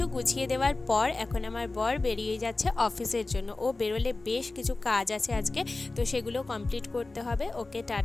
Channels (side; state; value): right; quieter; 3.3 dB